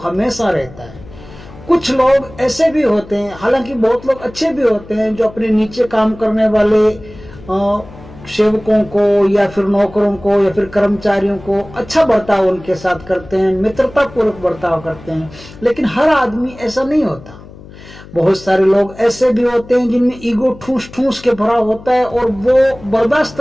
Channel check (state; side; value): noise; left; hum, 19 dB below the sound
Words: रहता है। कुछ लोग ऐसे भी होते हैं, हालांकि बहुत लोग अच्छे भी होते हैं, जो अपने नीचे काम करने वाले सेवकों को या फिर नौकरों को या फिर कर्मचारियों को अच्छा बर्ताव उनके साथ करते हैं, मित्रता पूर्वक बर्ताव करते हैं। लेकिन हर आदमी ऐसा नहीं होता। बहुत सारे लोग ऐसे भी होते हैं जिनमें ईगो ठूस ठूस के भरा होता है और वो बर्दाश्त